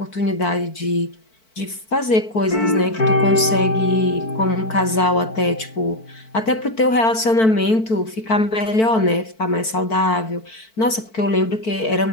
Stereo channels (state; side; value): late; right; 4.5 ms